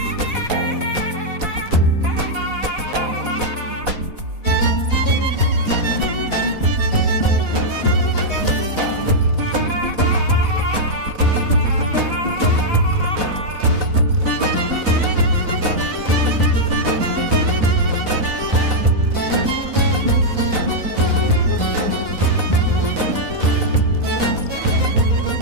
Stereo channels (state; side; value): late; left; 4.1 ms